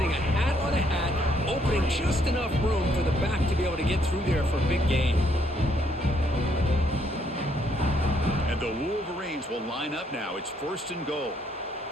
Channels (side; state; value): both; normal; correlation 0.70